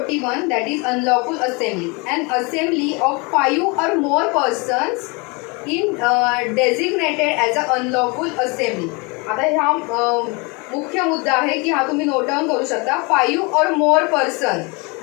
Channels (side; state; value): right; quieter; 29.3 dB